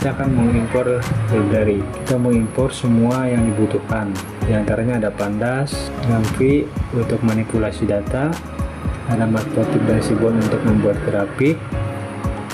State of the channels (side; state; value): both; identical; correlation 1.00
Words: akan mengimpor library. Kita mengimpor semua yang dibutuhkan. Di antaranya ada pandas, Ngamfi untuk manipulasi data, ada matplotlib dan seaborn untuk membuat grafik,